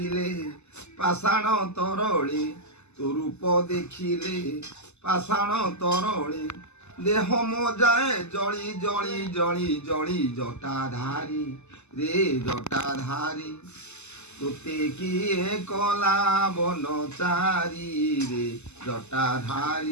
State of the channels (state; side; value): late; right; 0.82 ms